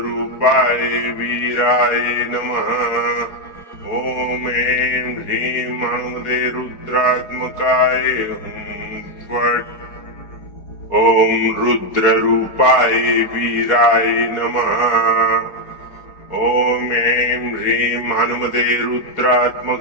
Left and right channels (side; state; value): right; late; 4.6 ms